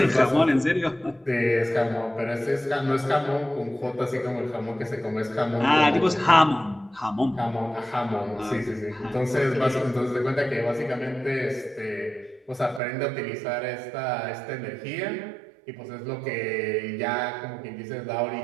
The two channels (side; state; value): left; drops out; at 12.8 s